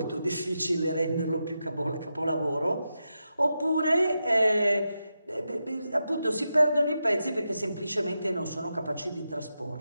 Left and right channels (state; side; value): inverted; both; correlation -0.88